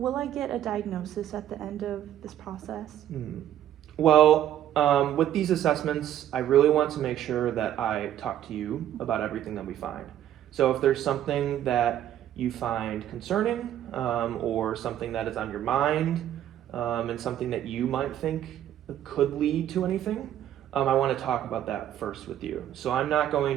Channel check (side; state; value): left; quieter; 11.4 dB